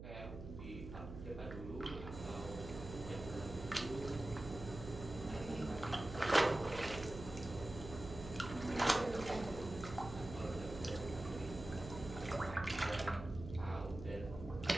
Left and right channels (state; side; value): noise; right; hum, 10 dB below the sound